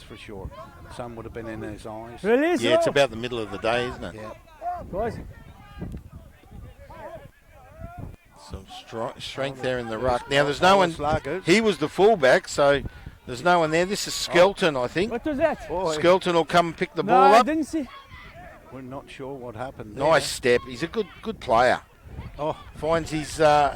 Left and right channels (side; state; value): both; identical; correlation 1.00